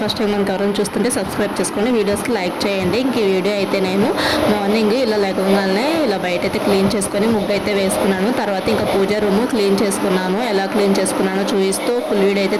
ఫస్ట్ టైం మనకు ఎవరైనా చూస్తుంటే సబ్స్క్రైబ్ చేసుకోండి, వీడియోస్కి లైక్ చేయండి. ఇంక ఈ వీడియో అయితే నేను మార్నింగ్ ఇలా లేకగానే ఇలా బయట అయితే క్లీన్ చేసుకొని ముగ్గు అయితే వేసుకున్నాను. తర్వాత ఇంకా పూజ రూమ్ క్లీన్ చేసుకున్నాను. ఎలా క్లీన్ చేసుకున్నానో చూపిస్తూ ఫుల్ వీడియో అయితే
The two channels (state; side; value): identical; both; correlation 1.00